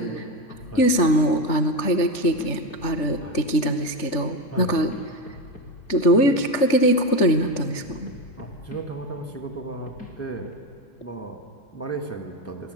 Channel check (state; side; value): late; right; 3.4 ms